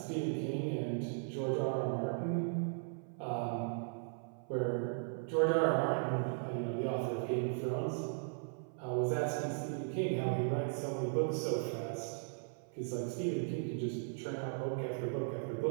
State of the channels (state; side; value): silent; left; 53 dB below the other